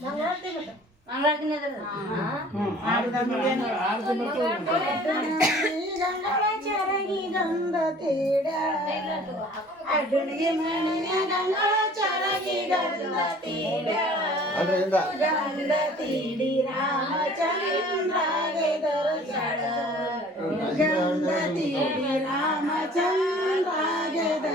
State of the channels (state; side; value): normal; both; correlation 0.50